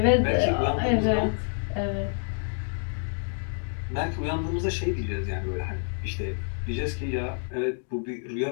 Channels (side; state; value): right; silent; 60 dB below the other